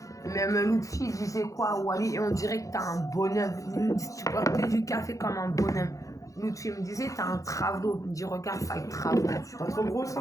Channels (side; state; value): right; late; 0.16 ms